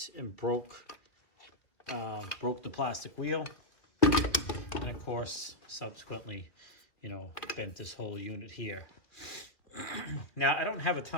and broke the plastic wheel, and of course subsequently, bent this whole unit here. Now I don't have a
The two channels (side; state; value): right; late; 2.0 ms